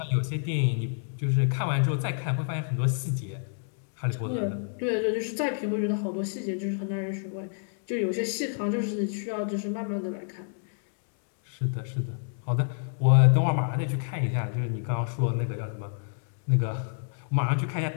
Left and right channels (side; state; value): right; silent; digital silence